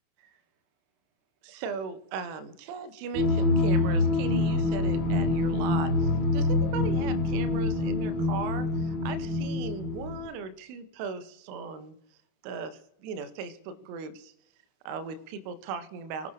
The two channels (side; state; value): left; late; 32 ms